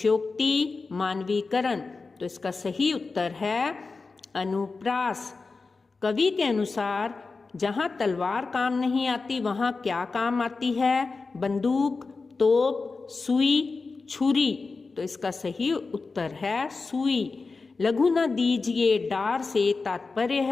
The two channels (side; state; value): right; quieter; 4.1 dB